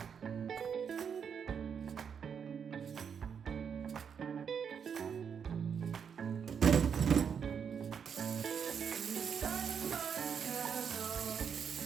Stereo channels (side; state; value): left; quieter; 7.2 dB